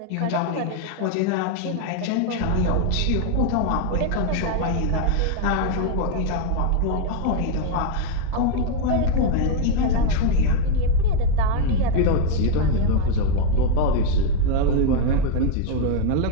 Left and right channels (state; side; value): different; both; correlation 0.01